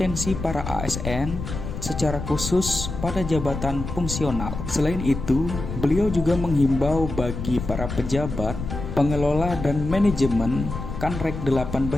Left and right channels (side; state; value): left; noise; rumble, 7 dB below the sound